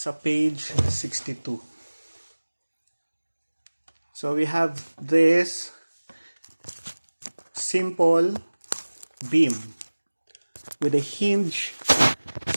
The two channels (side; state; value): both; inverted; correlation -1.00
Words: page 62. So we have this simple beam with a hinge